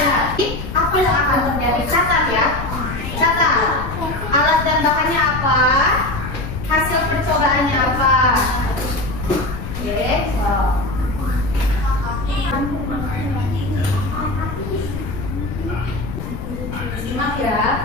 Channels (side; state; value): left; noise; rumble, 7 dB below the sound